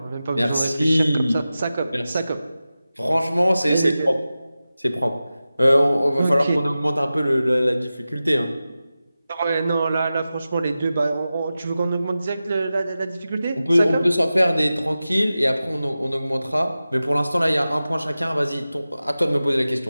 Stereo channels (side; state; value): both; inverted; correlation -0.94